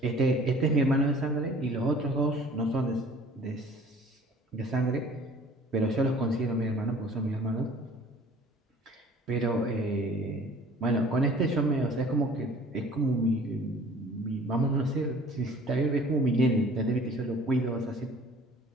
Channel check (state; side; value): normal; both; correlation 0.50